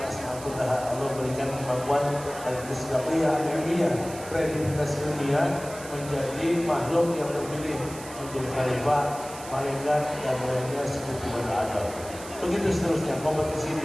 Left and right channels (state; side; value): noise; right; hiss, 15 dB below the sound